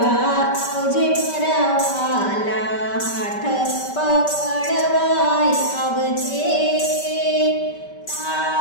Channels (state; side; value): late; right; 5.2 ms